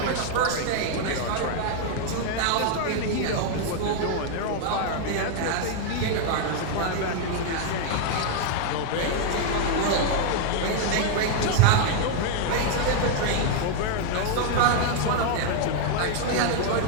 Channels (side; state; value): both; different; correlation 0.00